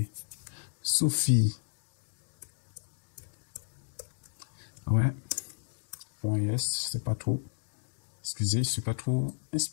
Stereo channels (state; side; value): silent; right; digital silence